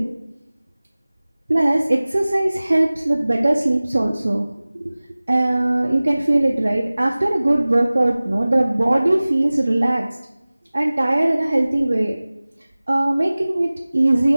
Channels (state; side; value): inverted; both; correlation -0.99